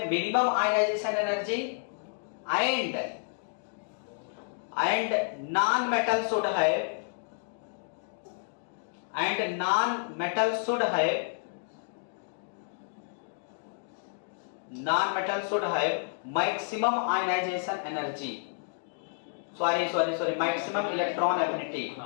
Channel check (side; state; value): right; silent; digital silence